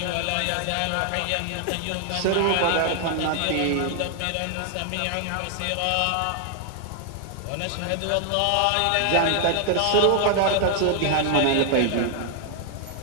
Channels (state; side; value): different; both; correlation 0.00